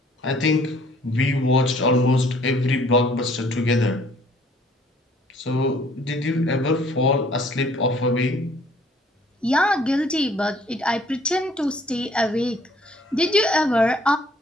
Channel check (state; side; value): normal; both; correlation 0.59